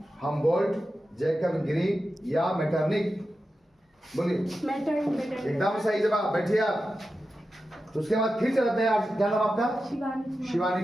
Humboldt, Jacob green या मेटरनिख। बोलिए। एकदम सही जवाब। बैठिए आप। तो उसके बाद फिर चलते हैं। क्या नाम आपका? शिवानी शिवानी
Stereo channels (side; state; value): both; normal; correlation 0.91